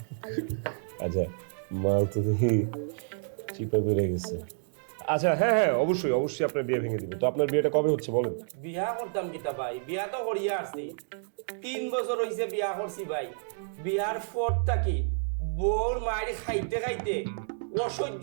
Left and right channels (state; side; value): silent; left; digital silence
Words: আচ্ছা, মাল তো দেখি চিপা বেড়ে গেছে। আচ্ছা হ্যাঁ হ্যাঁ, অবশ্যই অবশ্যই আপনার বিয়ে ভেঙে দিবে। তো আপনার বিয়েটা কবে হচ্ছে বলেন? বিয়া করতাম কিতা ভাই, বিয়া তো করিয়া আসছি, 3 বছর হইছে বিয়া করছি ভাই। বিয়ার পর থাকি বউর মায়ের খাইতে খাইতে অসহ্য